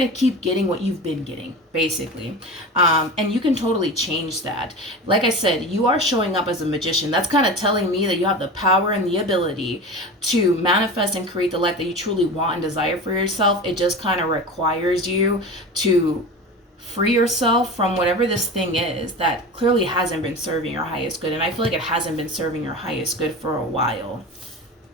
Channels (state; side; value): normal; both; correlation 0.30